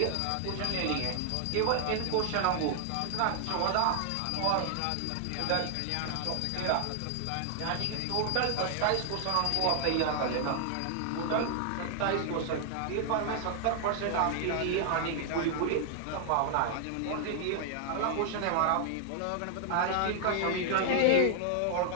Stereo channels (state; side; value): different; both; correlation 0.00